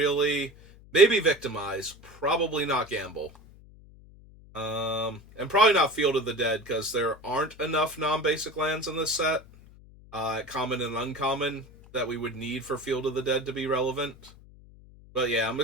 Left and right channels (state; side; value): noise; left; hum, 22 dB below the sound